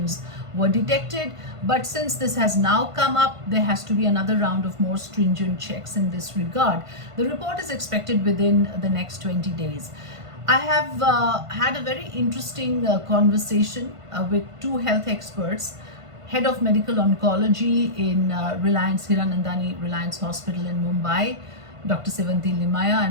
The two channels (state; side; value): late; left; 1.5 ms